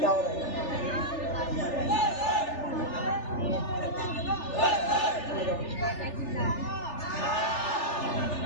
हो रहा है?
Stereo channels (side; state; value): right; late; 3.4 ms